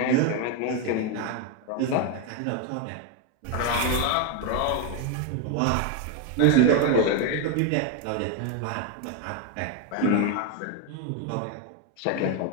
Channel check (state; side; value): different; both; correlation 0.01